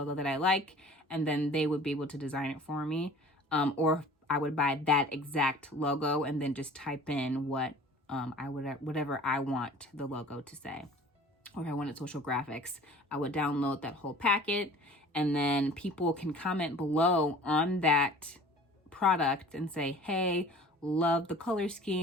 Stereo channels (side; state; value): both; normal; correlation 0.46